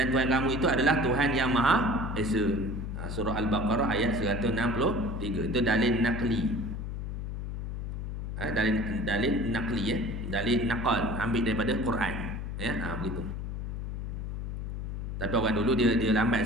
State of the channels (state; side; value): noise; left; hum, 5 dB below the sound